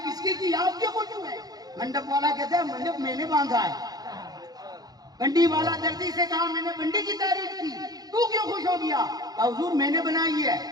اس کی آپ کیوں خوش ہوئے؟ منڈپ والا کہتا ہے منڈپ میں نے باندھا ہے۔ بنڈی والا دردی سے کہا میں نے بنڈی کی تعریف کی، تو کیوں خوش ہو گیا؟ کہا حضور میں نے بنائی ہے۔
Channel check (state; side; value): late; left; 0.19 ms